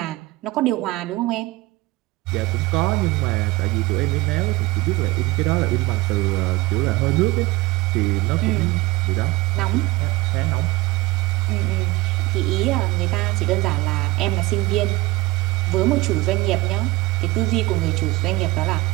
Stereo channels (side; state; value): left; quieter; 19.7 dB